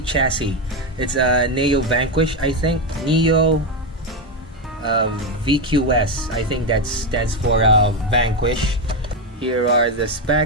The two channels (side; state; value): both; normal; correlation 0.09